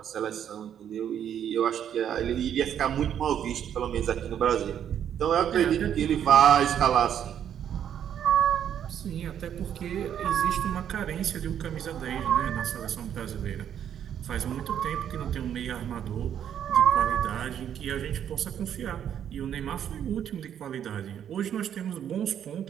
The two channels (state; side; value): quieter; left; 9.4 dB